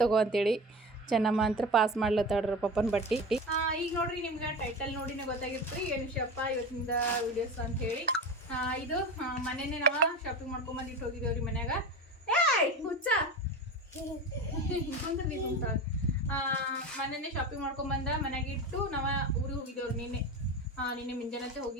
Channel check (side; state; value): both; normal; correlation 0.27